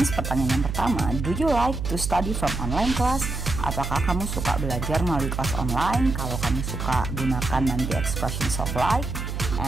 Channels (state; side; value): noise; right; hum, 4 dB below the sound